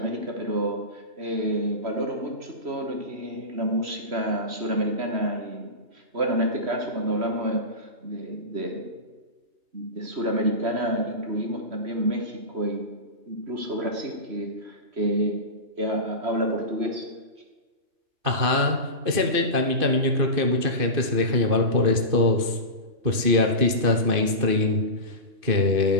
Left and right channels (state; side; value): late; left; 2.6 ms